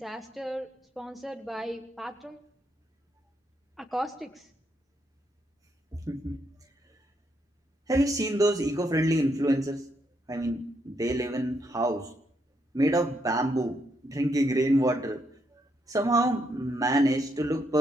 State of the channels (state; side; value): normal; both; correlation 0.77